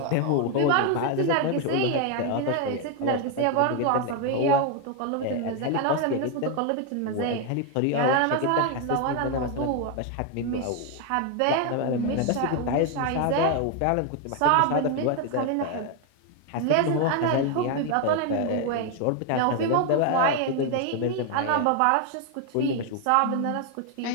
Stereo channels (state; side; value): different; both; correlation 0.01